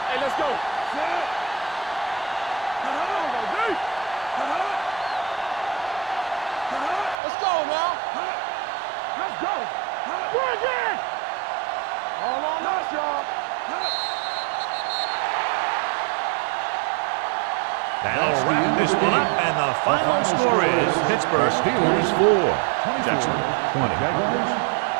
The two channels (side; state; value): left; drops out; at 7.2 s